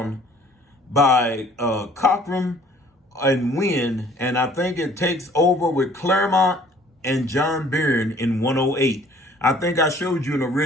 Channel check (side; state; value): both; normal; correlation 0.55